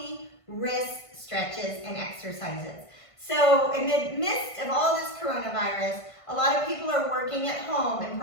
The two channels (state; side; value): late; right; 1.5 ms